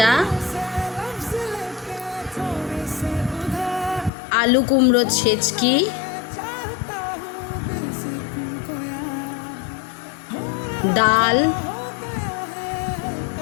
আলু কুমড়ো ছেচকি, ডাল,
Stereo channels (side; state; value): right; drops out; at 4.1 s